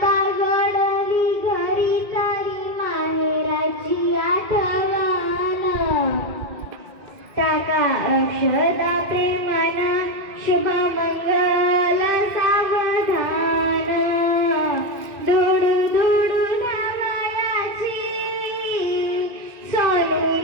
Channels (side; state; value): left; late; 2.1 ms